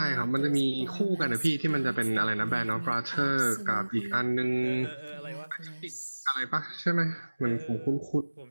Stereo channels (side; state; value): both; inverted; correlation -1.00